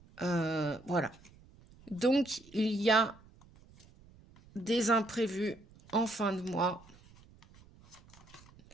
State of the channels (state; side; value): noise; right; rumble, 25 dB below the sound